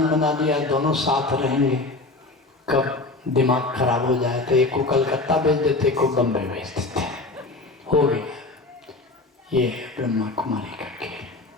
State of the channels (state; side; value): quieter; right; 3.2 dB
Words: बना दिया, दोनों साथ रहेंगे, कब दिमाग खराब हो जाए तो एक को कलकत्ता भेज देते, एक को बम्बई भेज देते, हो गया। ये है ब्रह्मा कुमारी का खेल।